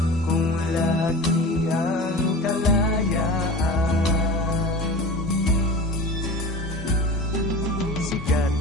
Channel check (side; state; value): both; normal; correlation 0.34